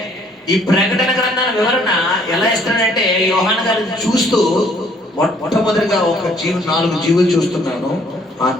ఈ ప్రకటన గ్రంథాల వివరణ ఎలా ఇస్తాడంటే యోహాను గారిని చూస్తూ మొట్టమొదటిగా ఒక 4 జీవులు చూస్తున్నాను. ఆ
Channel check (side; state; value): both; normal; correlation 0.62